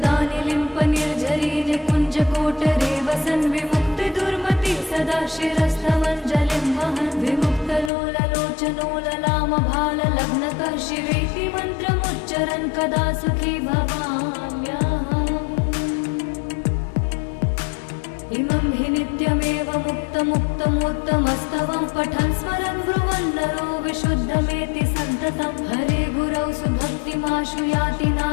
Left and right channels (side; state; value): right; drops out; at 7.9 s